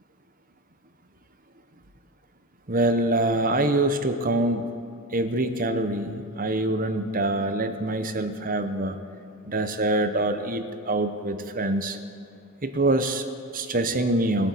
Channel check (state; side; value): normal; both; correlation 0.23